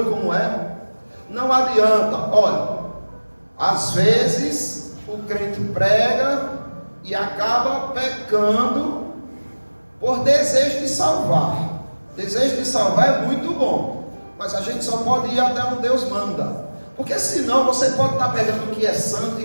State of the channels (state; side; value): inverted; both; correlation -1.00